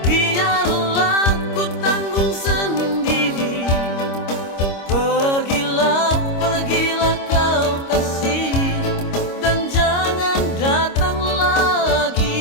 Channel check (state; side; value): late; right; 25 ms